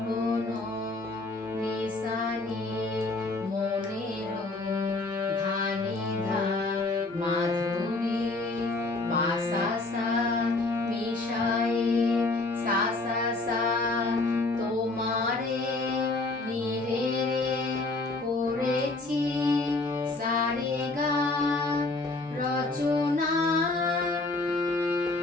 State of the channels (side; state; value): right; quieter; 3.2 dB